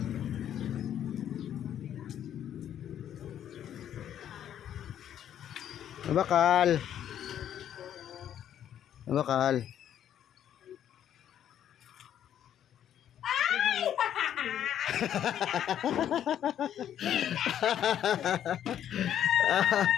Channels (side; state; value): right; quieter; 10.3 dB